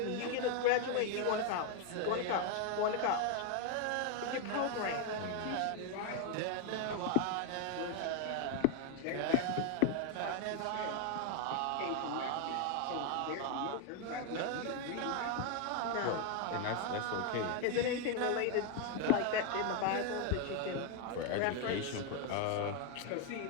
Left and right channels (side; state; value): both; different; correlation 0.01